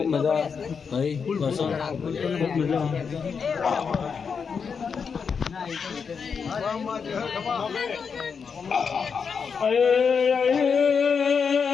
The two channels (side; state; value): right; quieter; 6.0 dB